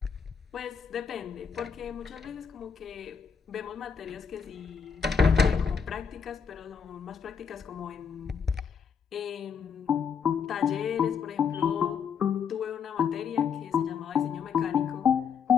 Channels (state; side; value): quieter; right; 6.8 dB